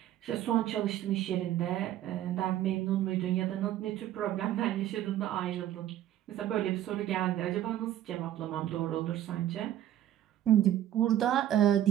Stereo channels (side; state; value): left; quieter; 12.3 dB